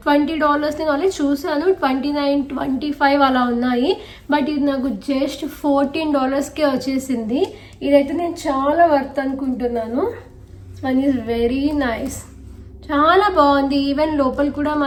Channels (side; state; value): both; identical; correlation 1.00